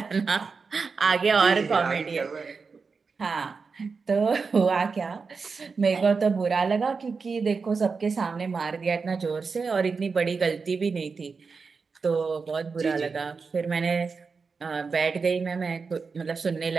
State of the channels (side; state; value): left; quieter; 4.9 dB